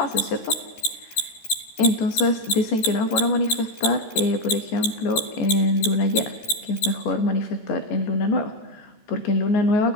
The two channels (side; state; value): right; late; 14 ms